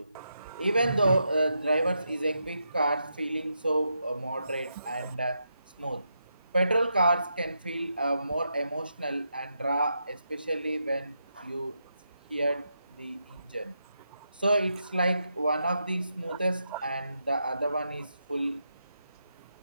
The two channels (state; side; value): inverted; both; correlation -0.84